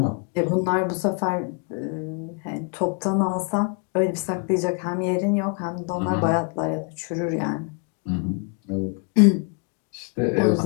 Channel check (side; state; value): right; quieter; 34.2 dB